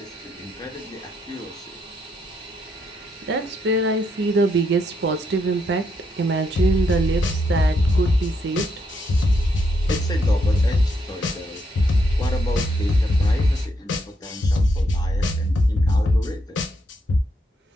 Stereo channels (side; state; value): both; normal; correlation 0.77